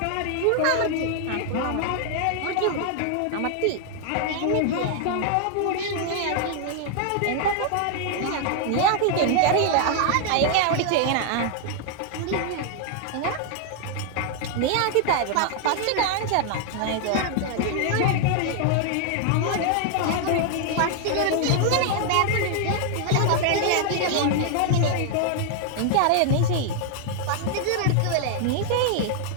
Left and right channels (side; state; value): both; different; correlation 0.00